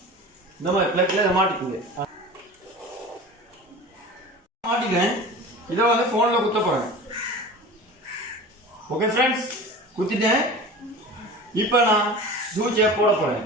இந்த மாதிரி பிளக்ல இதை மாட்டிக்குங்க. மாட்டிக்கிறேன். இதை வந்து ஃபோனில் குத்த போகிறேன். ஓகே ஃப்ரெண்ட்ஸ், குத்திட்டேன். இப்போ நான் சூச்சியை போட போகிறேன்.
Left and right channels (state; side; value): normal; both; correlation 0.36